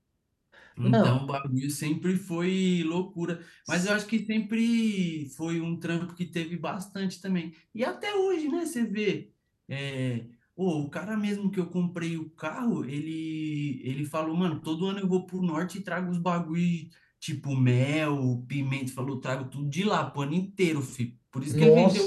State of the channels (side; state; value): both; identical; correlation 1.00